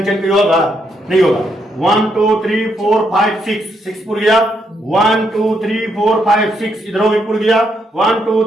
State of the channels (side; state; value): both; normal; correlation 0.77